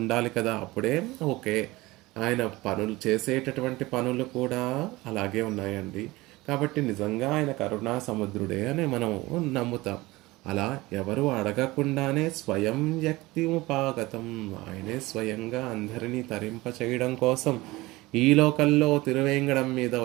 కదా. అప్పుడే ఓకే, ఆయన పనులు చేసేటటువంటి పనులు కూడా అలాగే ఉన్నాయండి. కాబట్టి నిజంగా ఆయన కరుణా సముద్రుడే అని మనం నమ్ముతాం. అలా ఎవరు అడగకుండానే స్వయం వ్యక్తిముపాగతం, ఆయనే స్వయంగా అందరినీ తరింప చేయడం కోసం ఈ లోకల్లో తిరువేంగడం మీద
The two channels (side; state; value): left; quieter; 20.4 dB